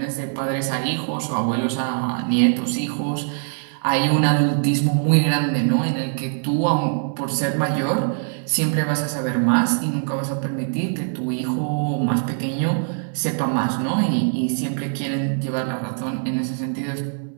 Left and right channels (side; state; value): left; silent; 60 dB below the other